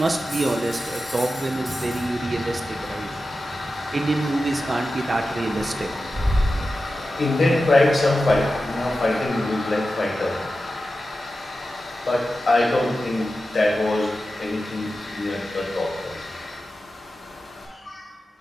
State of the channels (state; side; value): normal; both; correlation 0.92